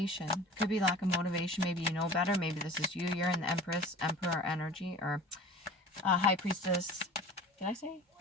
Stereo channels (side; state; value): both; normal; correlation 0.40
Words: Could be lack of motivation. Maybe you know better. Maybe this is you. You're in the Empress, Emperor energy, or High Priestess. Did I say